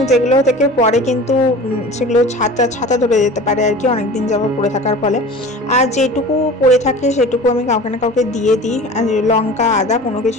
যেগুলো থেকে পরে কিন্তু সেগুলো ছাতা ধরে যেতে পারে আর কি, অনেকদিন যাবত পড়ে থাকার ফলে। আর যেটুকু পড়ে থাকে সেটুকু আমি কাউকে না কাউকে দিয়ে দিই, আর লঙ্কা আদা কোনো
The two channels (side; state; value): both; normal; correlation 0.38